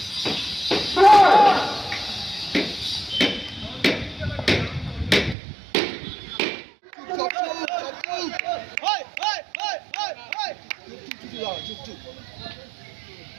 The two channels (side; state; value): left; drops out; at 5.4 s